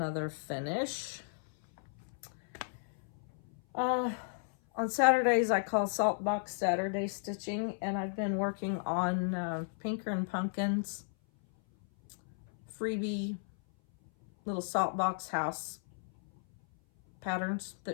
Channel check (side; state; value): right; silent; 55 dB below the other